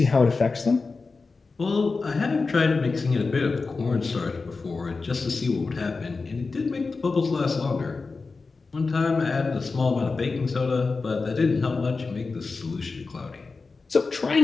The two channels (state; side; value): quieter; right; 4.2 dB